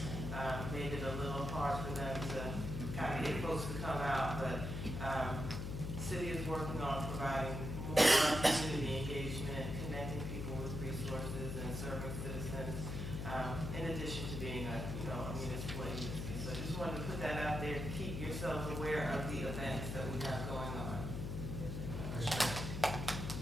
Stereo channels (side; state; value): left; noise; hum, 4 dB below the sound